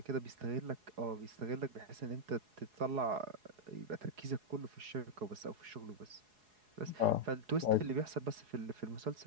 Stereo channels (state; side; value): late; left; 4.8 ms